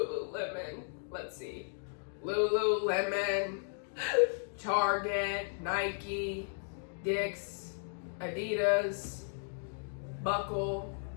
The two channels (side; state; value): right; silent; digital silence